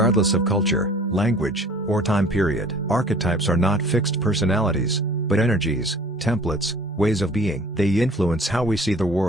of culture, language, or time period. Archetypes are not fixed personalities, but energies, templates, ways of being. They influence how we see the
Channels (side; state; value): both; normal; correlation 0.49